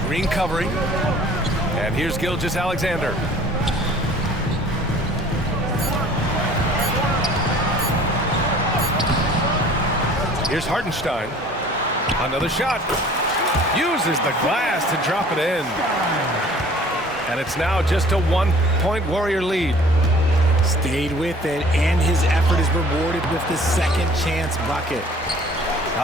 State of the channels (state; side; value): normal; both; correlation 0.50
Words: Green covering. And here's Gilgeous-Alexander. Here's Hartenstein. Another shot. Uses the glass to drop it in. And it's now just a 1-point Warrior lead. Stayed with it, and his effort is rewarded with the second chance bucket.